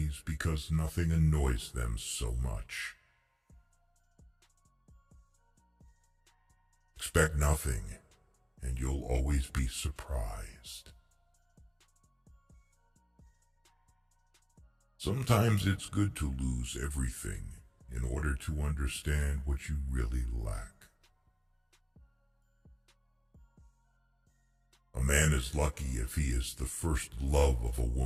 because nothing annoys them so much. Expect nothing, and you'll always be surprised. Sometimes it's good to lose everything in order to understand what you really lack. A man is lucky if he is the first love of a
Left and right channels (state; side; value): identical; both; correlation 1.00